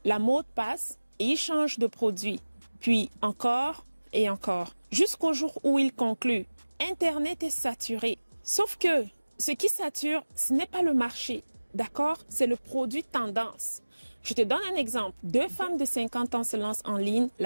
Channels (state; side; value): inverted; both; correlation -1.00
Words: La mode passe et ils changent de produit. Puis encore et encore, jusqu'au jour où ils concluent. Internet est saturé. Sauf que ce qui sature, ce n'est pas le marché, d'accord? C'est le produit tendance. Je te donne un exemple. 2 femmes de 50 ans se lancent en ligne